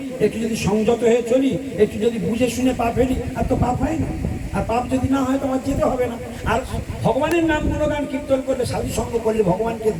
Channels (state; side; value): identical; both; correlation 1.00